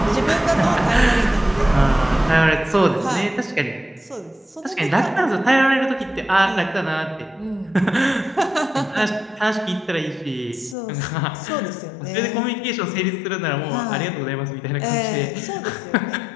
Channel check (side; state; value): right; drops out; at 10.8 s